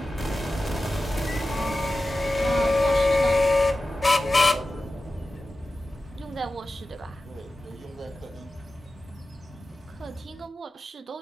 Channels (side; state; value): both; normal; correlation 0.94